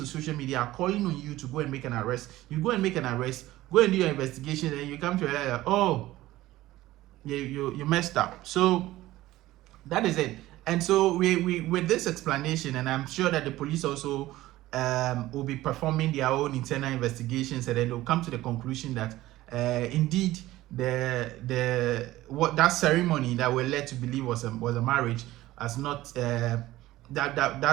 social media, are calling on you to go and make an arrest. You go and make an arrest, go and do your investigation, and you come to realize, oh, you messed up. So that is it. And so we with this explanation, and I'm sure that the police also will be performing their own internal investigations, and then they'll come to the conclusion that indeed that ceremony that we're led to believe was a marriage has not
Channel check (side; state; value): left; quieter; 16.5 dB